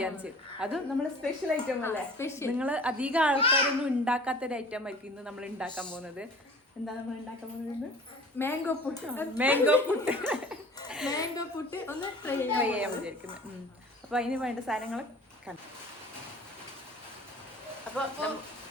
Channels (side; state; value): both; normal; correlation 0.45